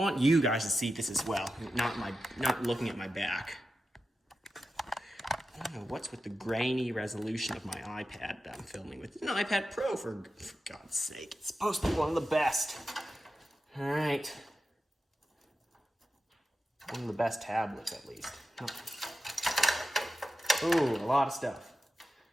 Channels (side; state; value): both; normal; correlation 0.92